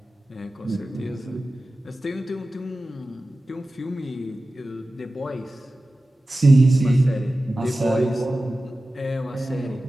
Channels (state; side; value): normal; both; correlation 0.95